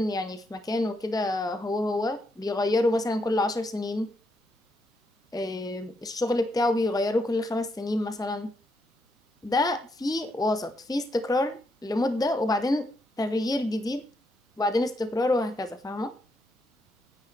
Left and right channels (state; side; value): normal; both; correlation 0.79